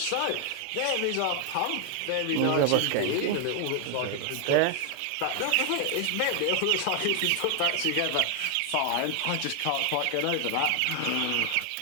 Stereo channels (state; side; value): different; both; correlation 0.00